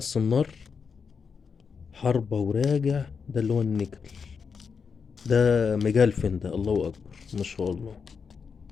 حربة وراجع، ده اللي هو النيكل، ده مجلفن ده، الله اكبر ما شاء الله.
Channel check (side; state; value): right; quieter; 5.8 dB